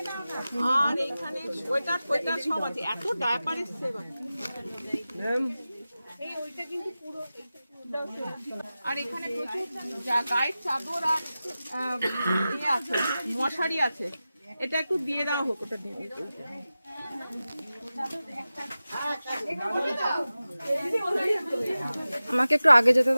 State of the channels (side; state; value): both; inverted; correlation -0.95